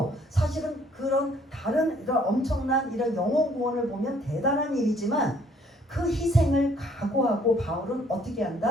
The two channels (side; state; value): both; normal; correlation 0.62